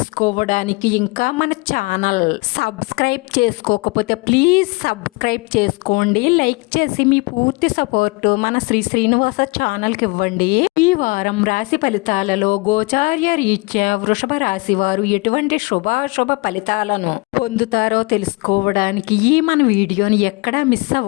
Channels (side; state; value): right; quieter; 26.4 dB